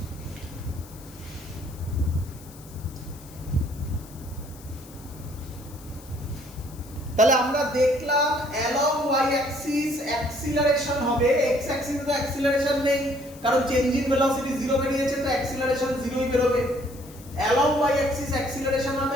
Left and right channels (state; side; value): noise; left; hiss, 21 dB below the sound